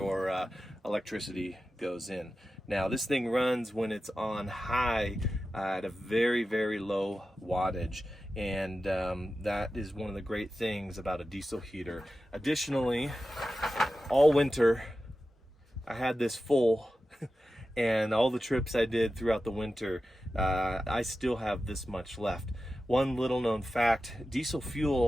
electricity goes in. Now this thing runs when it's on high at a very, very low wattage, and that is one of the great things about a diesel heater. Additionally, all winter I had this full, and all the trips I did throughout the winter, I still have this much left. One little known fact, diesel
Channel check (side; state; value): both; normal; correlation 0.93